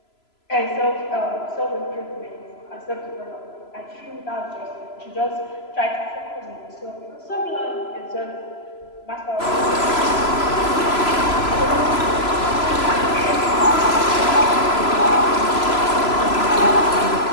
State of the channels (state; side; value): late; right; 3.0 ms